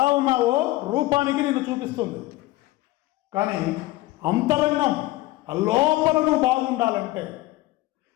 ఉన్నావో రూపానికి నిన్ను చూపిస్తుంది. కానీ అంతరంగం లోపల నువ్వు బాగుండాలంటే,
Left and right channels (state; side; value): quieter; right; 18.1 dB